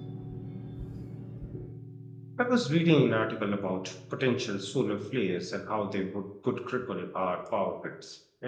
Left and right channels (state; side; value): identical; both; correlation 1.00